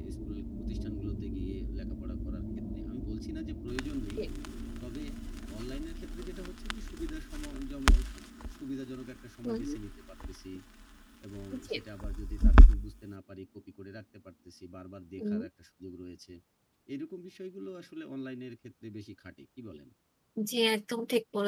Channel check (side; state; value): both; identical; correlation 1.00